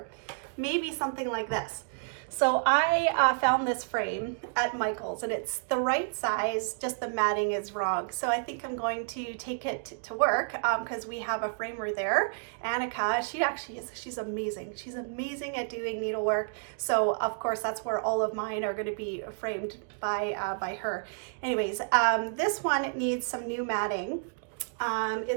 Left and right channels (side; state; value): left; silent; digital silence